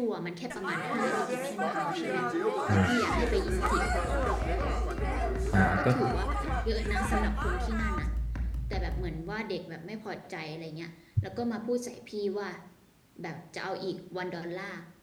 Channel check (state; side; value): identical; both; correlation 1.00